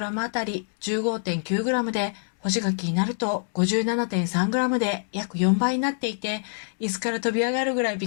あたり 15.9g で、干し柿になると 57.3g で約4倍になっていて、椅子から飛び上がるぐらいび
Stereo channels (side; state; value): right; silent; digital silence